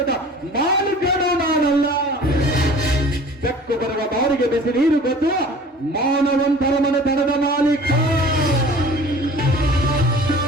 ಮಾಲೀಕನೂ ನಾನಲ್ಲ. ಬೆಕ್ಕು ಬರುವ ಬಾರಿಗೆ ಬಿಸಿ ನೀರು ಗೊತ್ತು ಮಾನವಂತರ ಮನೆತನದ ಮಾಲೀಕ.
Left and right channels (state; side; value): normal; both; correlation 0.45